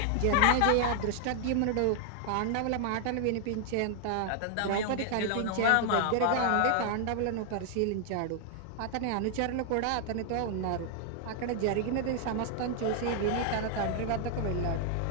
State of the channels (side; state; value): both; different; correlation 0.00